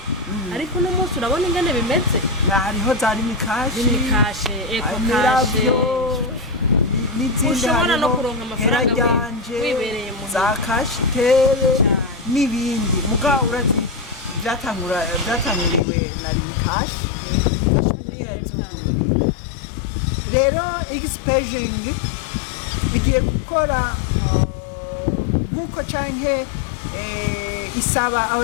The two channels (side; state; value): right; drops out; at 15.8 s